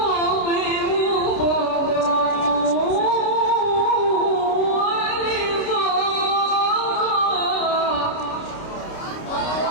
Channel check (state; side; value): late; right; 29 ms